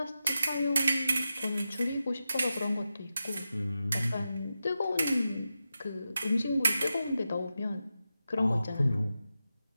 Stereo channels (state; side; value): inverted; both; correlation -0.90